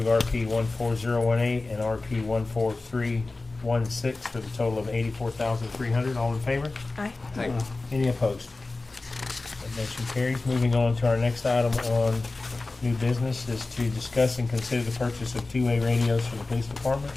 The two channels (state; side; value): quieter; right; 3.4 dB